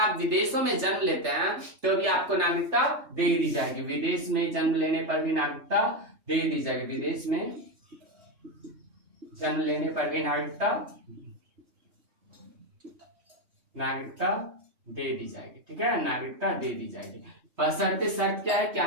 विदेशों में जन्म लेते हैं तो भी आपको नागरिकता दे दी जाएगी। विदेश में जन्म लेने पर भी नागरिकता दे दी जाएगी। विदेश में जन्म लेने पर भी नागरिकता दे दी जाएगी। ठीक है? नागरिकता दे दी जाएगी। बशर्ते शर्त क्या है कि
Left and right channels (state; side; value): late; left; 3.3 ms